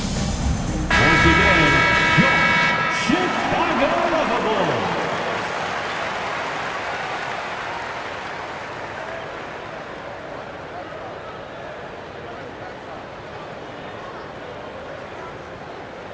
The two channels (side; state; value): both; identical; correlation 1.00